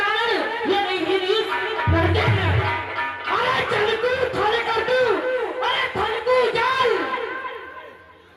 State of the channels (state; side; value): identical; both; correlation 1.00